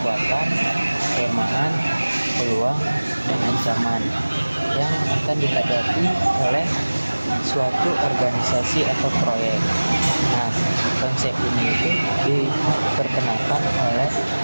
kelemahan, peluang, dan ancaman yang akan dihadapi oleh suatu organisasi atau proyek. Nah, konsep ini itu diperkenalkan oleh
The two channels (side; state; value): both; inverted; correlation -1.00